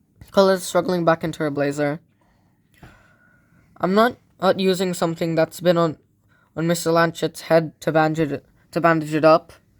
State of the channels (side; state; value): both; identical; correlation 1.00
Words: Coletta's struggling back into her blazer. I'm not using something that's been on Mr. Lanchet's head to bandage it up.